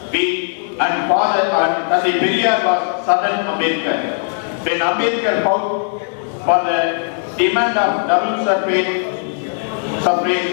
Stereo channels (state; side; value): silent; right; digital silence